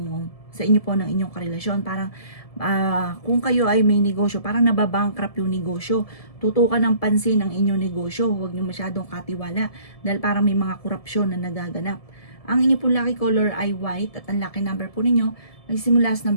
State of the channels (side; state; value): right; late; 1.7 ms